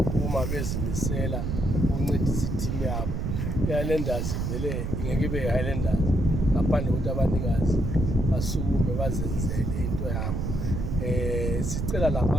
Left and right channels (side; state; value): right; noise; rumble, 1 dB below the sound